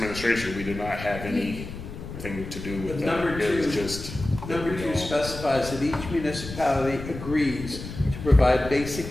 we did not have anything to do with But that. number It was two- just. Number two specifies that each municipality agrees to provide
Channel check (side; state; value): left; noise; rumble, 10 dB below the sound